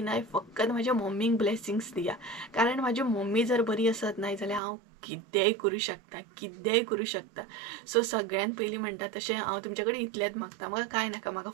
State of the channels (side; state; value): left; drops out; at 4.6 s